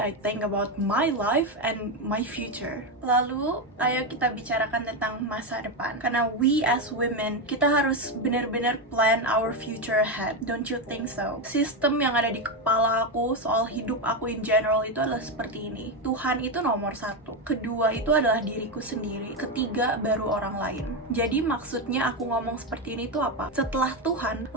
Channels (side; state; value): both; normal; correlation 0.09